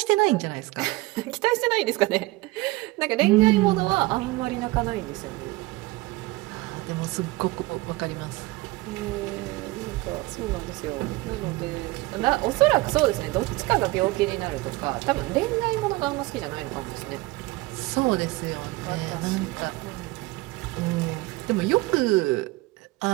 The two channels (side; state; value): left; quieter; 20.8 dB